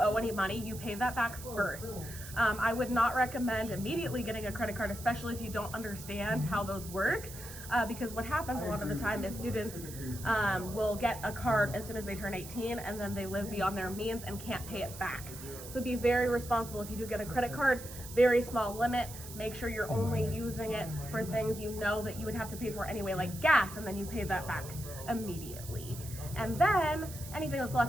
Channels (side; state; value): right; noise; hiss, 13 dB below the sound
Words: any money, you pay that back first. I would not recommend immediately getting a credit card, especially if you don't understand how those work. Because what happens a lot of the time is students will get a card as soon as they turn 18, and then they live beyond their means and can't pay it back. So be very responsible. If you do get a credit card, very small limit. Make sure you're only using it for things you know that you would have to pay for anyway, like gas, and then you pay that back immediately. And then anything that's